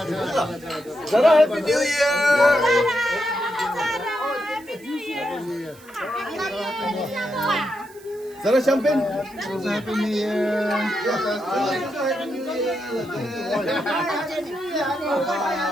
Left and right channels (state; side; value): noise; right; hiss, 24 dB below the sound